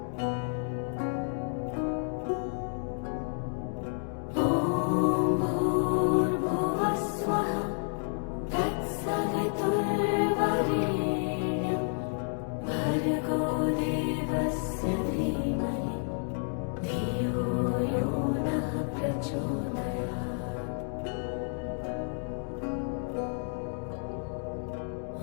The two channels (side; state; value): right; silent; 57 dB below the other